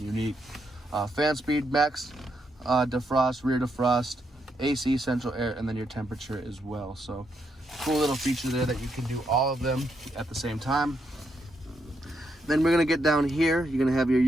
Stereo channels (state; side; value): normal; both; correlation 0.79